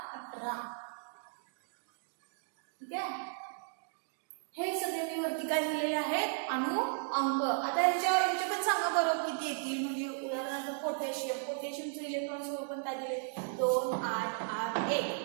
18. ठीक आहे. हे सगळे मी वरती काय लिहिलेले आहेत अणु अंक. आता ह्याचे पण सांगा बरं किती येतील. म्हणजे उदाहरणार्थ पोटॅशियमचं इलेक्ट्रॉन स्वरूपण काय दिले 2 8 8 1,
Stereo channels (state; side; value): silent; left; digital silence